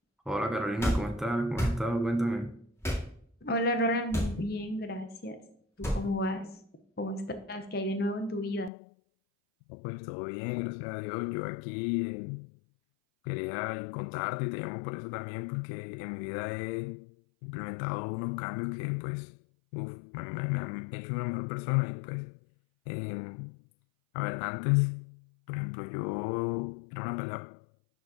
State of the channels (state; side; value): drops out; right; at 8.7 s